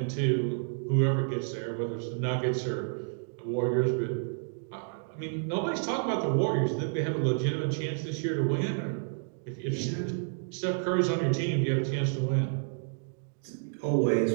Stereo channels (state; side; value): silent; left; digital silence